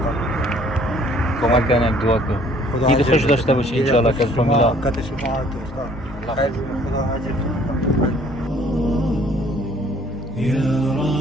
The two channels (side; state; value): both; normal; correlation 0.58